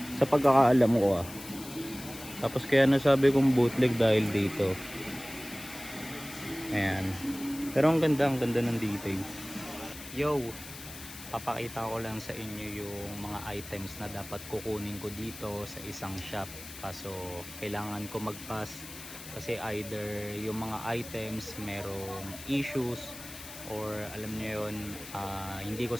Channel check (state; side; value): noise; left; hiss, 13 dB below the sound